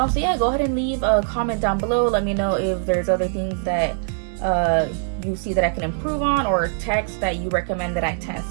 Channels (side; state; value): left; silent; 64 dB below the other